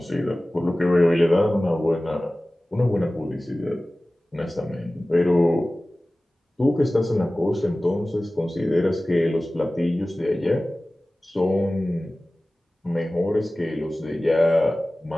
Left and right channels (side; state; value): both; normal; correlation 0.97